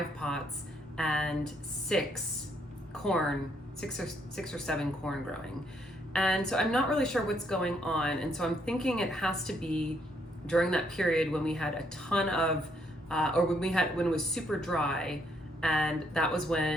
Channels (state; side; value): normal; both; correlation 0.72